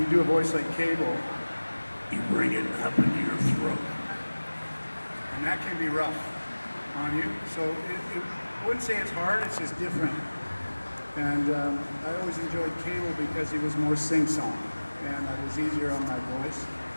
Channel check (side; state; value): both; inverted; correlation -1.00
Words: do a voice like Cable, you bring it up into your throat. And that can be rough on you. So I wouldn't say it's hard, it's just different. And I always enjoyed Cable because he was more sing-song. And it was easier on my voice.